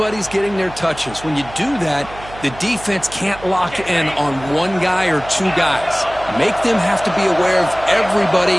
getting their touches. When you do that, the defense can't lock in on one guy or two guys. Make them have to be aware of everybody,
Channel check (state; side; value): noise; right; hum, 16 dB below the sound